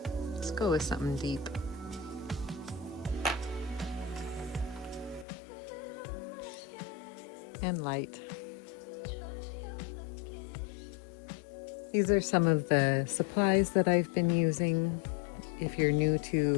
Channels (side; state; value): right; drops out; at 5.2 s